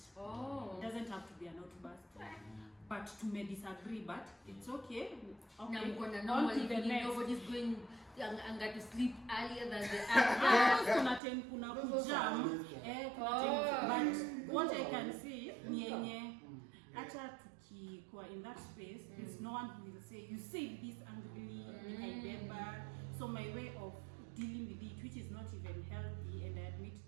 It doesn't have to be an outburst. But to may disagree, but it's okay. On to the next. Nobody's going to sleep earlier than the other. But what I can see, acha tukikuwa in that space, there's no one who will say, you say this angrily, I remember. So my way of dealing with it, which is not even healthy, and I admit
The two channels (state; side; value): drops out; left; at 11.2 s